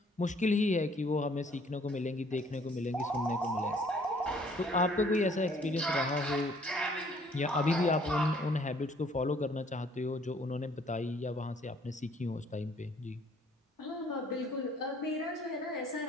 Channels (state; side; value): normal; both; correlation 0.60